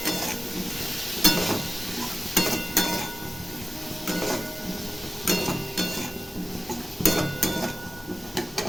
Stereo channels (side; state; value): both; normal; correlation 0.95